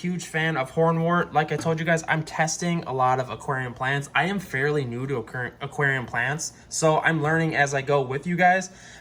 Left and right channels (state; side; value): identical; both; correlation 1.00